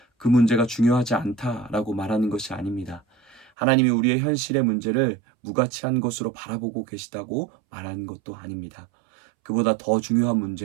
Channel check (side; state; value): left; drops out; at 3.5 s